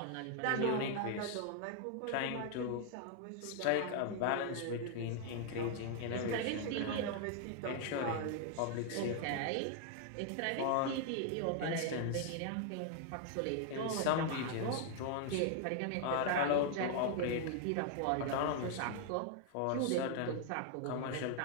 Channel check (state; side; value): different; both; correlation 0.00